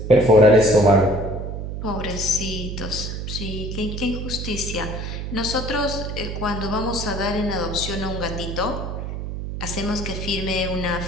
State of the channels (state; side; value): noise; right; hum, 5 dB below the sound